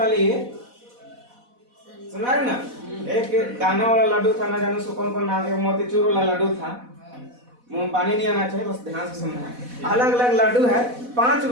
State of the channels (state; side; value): late; left; 4.1 ms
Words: लिए, सुना रहे ना? एक दाना वाला लड्डू था, ना जाने उसको कौन कौन नाम है, मोतीचूर वाला लड्डू था। मुंह में पानी नहीं आना चाहिए, बस ध्यान से सुनना है। अलग अलग लड्डू है, 5